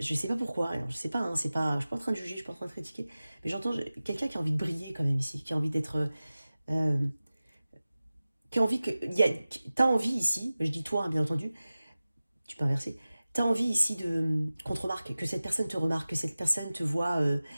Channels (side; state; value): both; inverted; correlation -0.97